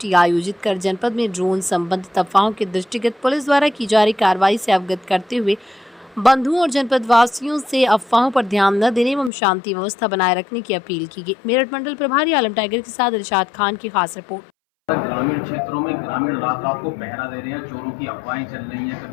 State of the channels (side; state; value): right; drops out; at 9.3 s